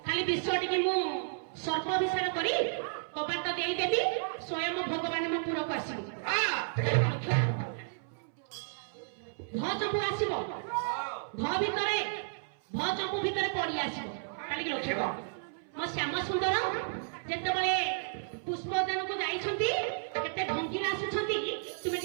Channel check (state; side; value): silent; left; 56 dB below the other